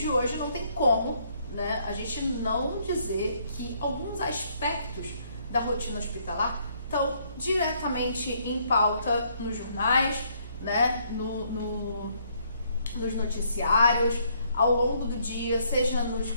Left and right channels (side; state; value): both; inverted; correlation -0.69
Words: hoje não tem como, né, a gente não dizer que alguns aspectos da rotina hospitalar estão diretamente em pauta nos jornais, né, nos noticiários, ao longo do dia, seja